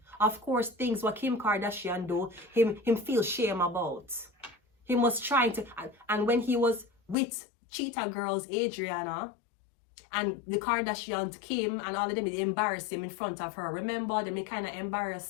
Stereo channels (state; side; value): drops out; right; at 7.2 s